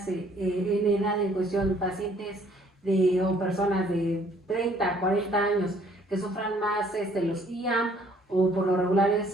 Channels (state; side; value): normal; both; correlation 0.61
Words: en edad en cuestión, pacientes o personas de 30, 40 años que sufran más los IAM o por lo regular